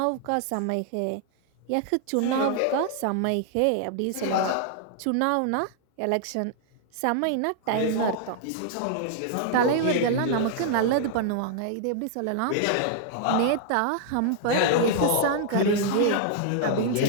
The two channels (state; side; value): different; both; correlation -0.01